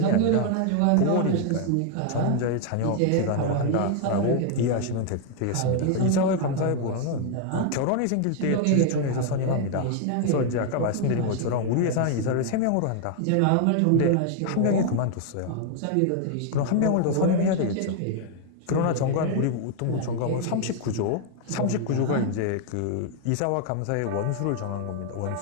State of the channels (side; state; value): both; different; correlation 0.00